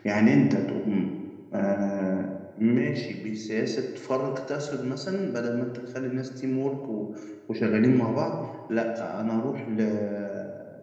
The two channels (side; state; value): both; identical; correlation 1.00